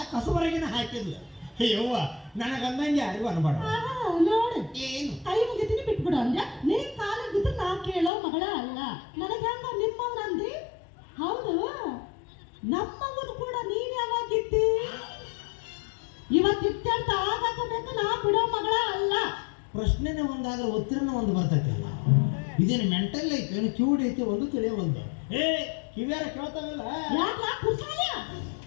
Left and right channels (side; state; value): right; drops out; at 8.1 s